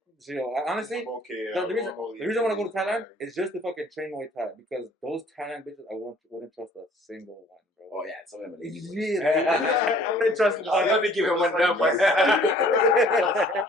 So, you know, honestly, I'm okay. the reason I want to go to Thailand is just to fucking train Muay Thai because those Thailand bitches I wouldn't trust a single one, bro. Oh yeah, some of them are lazy. boys. Really? I'm gonna trust him. Oh, let me give him one number.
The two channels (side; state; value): both; normal; correlation 0.55